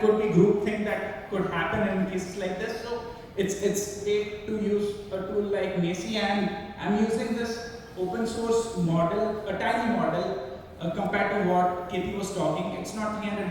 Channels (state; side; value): identical; both; correlation 1.00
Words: could be groupthink that could happen in cases like this. So it's great to use a tool like Macy, and I'm using this open source model, a tiny model compared to what Katie was talking. It's not